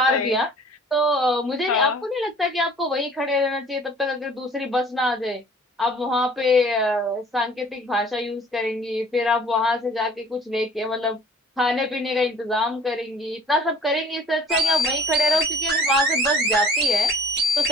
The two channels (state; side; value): normal; both; correlation 0.51